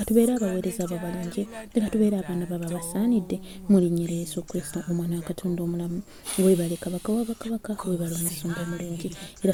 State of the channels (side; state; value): both; identical; correlation 1.00